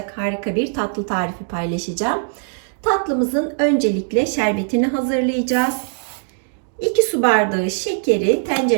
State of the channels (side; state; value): left; silent; digital silence